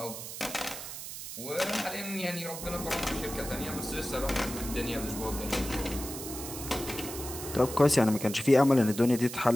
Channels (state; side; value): noise; right; hiss, 9 dB below the sound